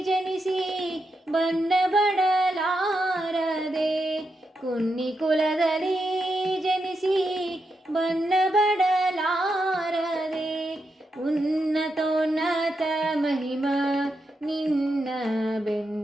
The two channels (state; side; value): normal; both; correlation 0.85